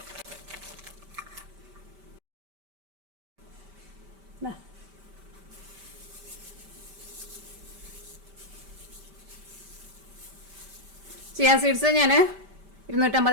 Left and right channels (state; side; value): late; left; 5.1 ms